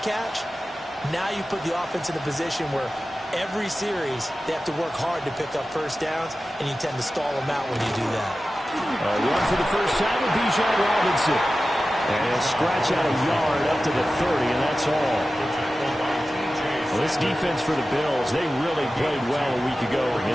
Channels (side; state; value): both; normal; correlation 0.94